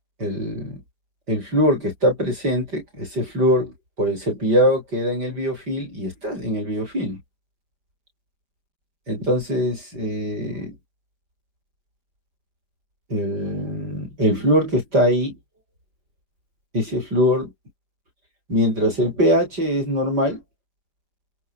el flúor que está presente, ese flúor por el cepillado queda en el biofilm y está en el biofilm. Entonces, el flúor que está ahí, ese flúor, mientras el pH es normal,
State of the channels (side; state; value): left; late; 4.9 ms